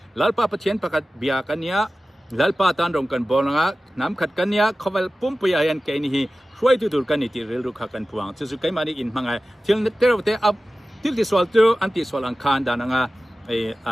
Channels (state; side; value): normal; both; correlation 0.96